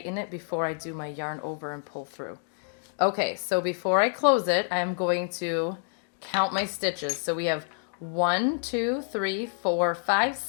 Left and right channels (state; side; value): silent; right; digital silence